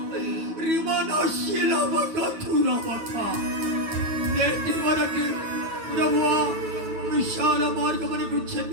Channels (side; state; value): left; late; 9.3 ms